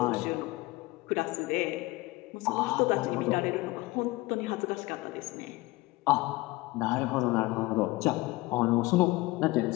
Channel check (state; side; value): quieter; right; 20.6 dB